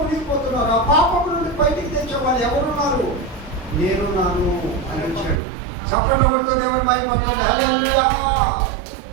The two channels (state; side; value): drops out; left; at 5.4 s